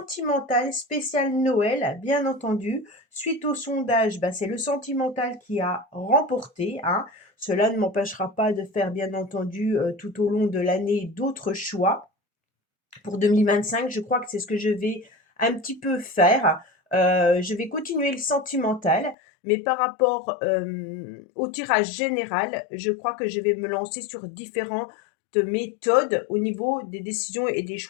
spécial Noël, bien entendu. Suite au sondage, c'est le sentimental qui a remporté, hein. Cela ne m'empêchera pas de faire, bien entendu, tout au long de l'année, d'autres choix. Pour 2025, je crois que c'est ce que je vais un petit peu faire. Je vais continuer le sentimental, mais par rapport au tirage général, je crois que je vais me lancer sur différentes méthodes au niveau des décisions et des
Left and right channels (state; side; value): drops out; right; at 19.2 s